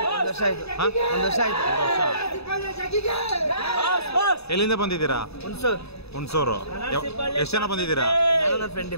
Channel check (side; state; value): right; late; 0.79 ms